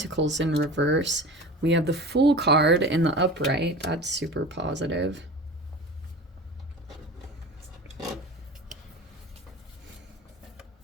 in reverse. We have the Fool card in the upright. That's super positive.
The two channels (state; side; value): normal; both; correlation 0.34